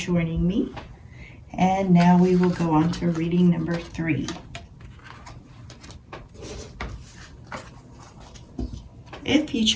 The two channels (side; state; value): both; identical; correlation 1.00